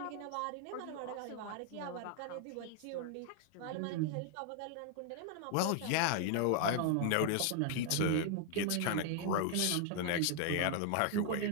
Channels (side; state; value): both; different; correlation 0.00